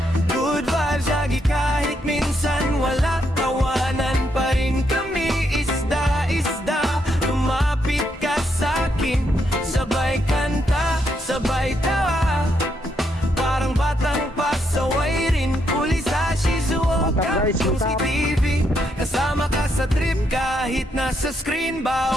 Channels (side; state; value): both; normal; correlation 0.77